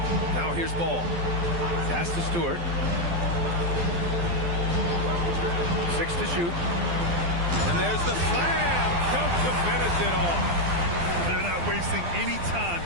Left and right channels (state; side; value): late; left; 12 ms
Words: Now here's Ball. Pass to Stewart. 6 to shoot. And there's the slam. Dunk to finish it off. They're not wasting any time